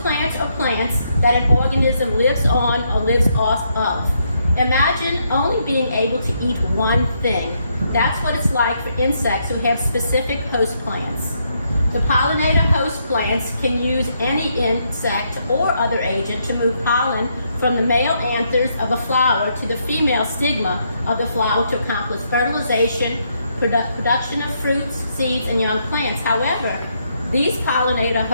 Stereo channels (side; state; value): both; inverted; correlation -0.76